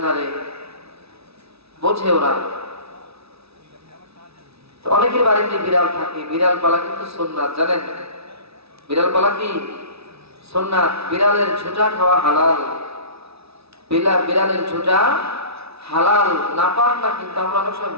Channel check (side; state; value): left; late; 0.78 ms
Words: বোঝে ওরা। অনেকের বাড়িতে বিড়াল থাকে, বিড়াল পালা কিন্তু সুন্নাত, জানেন? বিড়াল পালা কি সুন্নাত। বিড়ালের ঝুঁটা খাওয়া হালাল, বিড়ালের ঝুঁটা হালাল, নাপাক না, কিন্তু আমরা অনেক সময়